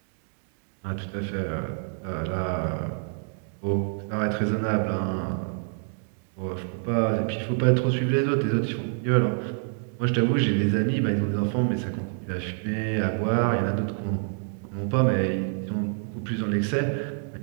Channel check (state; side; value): silent; left; 60 dB below the other